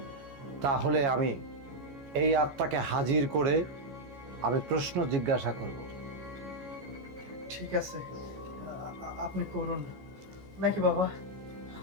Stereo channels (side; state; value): left; late; 14 ms